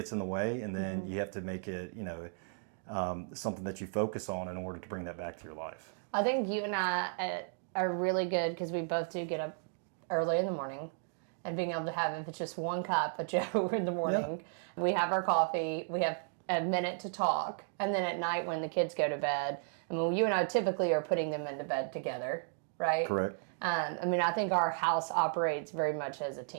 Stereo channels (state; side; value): silent; left; digital silence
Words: in the way, and then you have to make it, something that you focus on in order to bring that back to your life. I think you and I are really good because we both do get up early in the morning, and being able to have, if it's just one cup of Joe in the morning, we have our coffee, we have a minute to talk, and then at night when the kids go to bed, you and I typically are putting them into bed together, right? Correct. I think our house operates very much as a